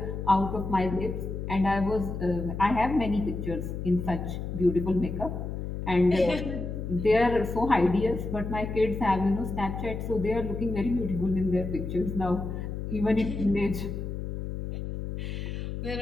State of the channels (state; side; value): noise; left; hum, 5 dB below the sound